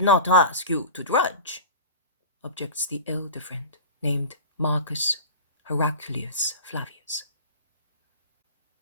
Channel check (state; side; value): inverted; both; correlation -0.34